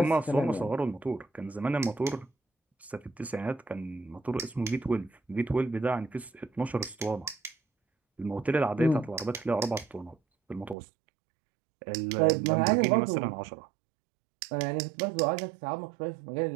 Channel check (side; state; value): left; drops out; at 10.8 s